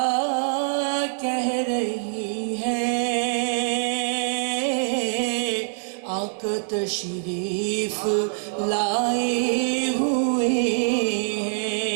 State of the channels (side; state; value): left; silent; digital silence